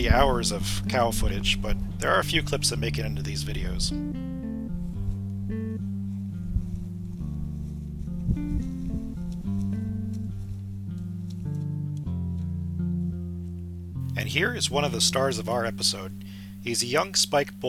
hours of cow footage, but there are a few clips that make it into these videos. And here is one of the stars of our episode. He's a young spike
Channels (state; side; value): identical; both; correlation 1.00